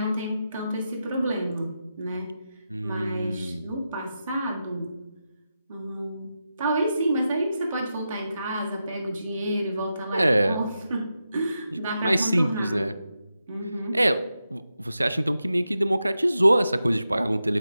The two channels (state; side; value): inverted; both; correlation -0.89